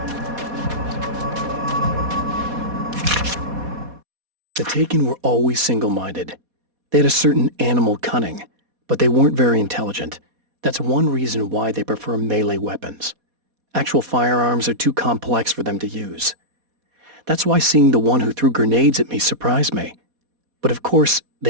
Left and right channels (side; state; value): left; late; 4.2 ms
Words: The Taken were always single-minded. They had a certain animal cunning, but they weren't very intelligent. That's one reason why they prefer melee weapons. Actual firearms are too complex for them to use. That's why seeing the one who threw grenades at me surprised me. But of course,